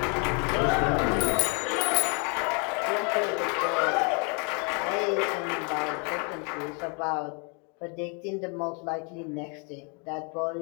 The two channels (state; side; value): quieter; right; 35.7 dB